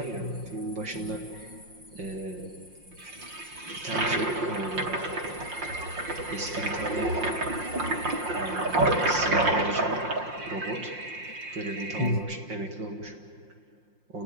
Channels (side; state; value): left; late; 5.6 ms